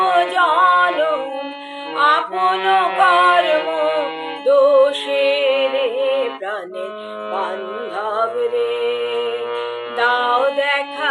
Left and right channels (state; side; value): identical; both; correlation 1.00